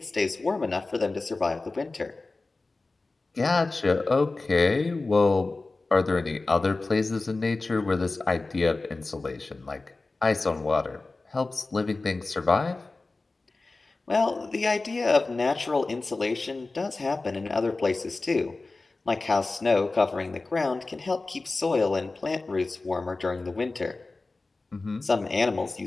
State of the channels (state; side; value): quieter; right; 3.4 dB